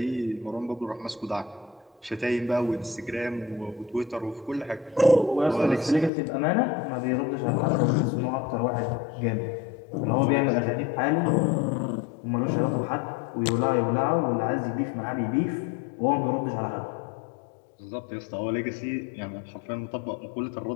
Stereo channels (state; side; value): drops out; right; at 6.1 s